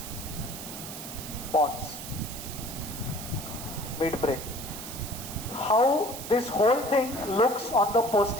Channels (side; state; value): right; noise; hiss, 9 dB below the sound